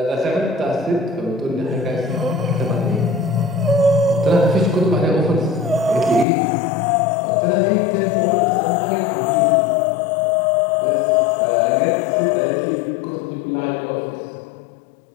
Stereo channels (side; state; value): right; drops out; at 6.2 s